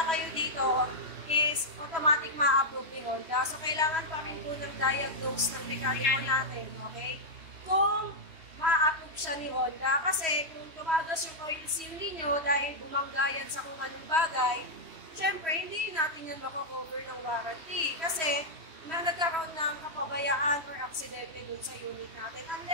kayo dito, is automatic ma-approve ni Honda. So, kailangan pa rin po ng diagnose ng mekaniko natin, okay? Kung ma-approve siya ni Honda, kasi kung tumagas yung oil seal ninyo dahil bumangga yan sa kung anong bagay, syempre, hindi natin yan mako-cover ng warranty. Kasi, na nagkaroon ng kapabayaan or aksidente dun sa unit natin.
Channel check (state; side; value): late; left; 3.1 ms